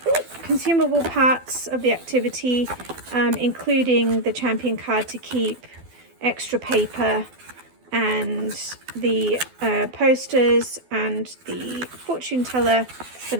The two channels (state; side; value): late; left; 12 ms